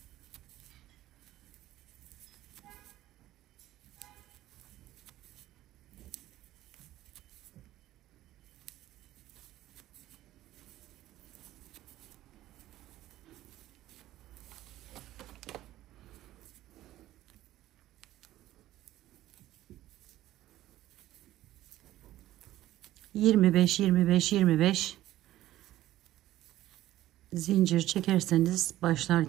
...25 zincir çekerseniz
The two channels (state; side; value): quieter; left; 14.6 dB